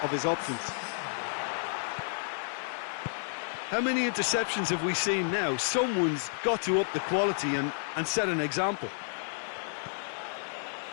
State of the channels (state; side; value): silent; right; digital silence